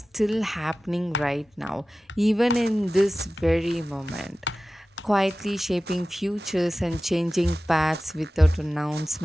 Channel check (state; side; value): normal; both; correlation 0.96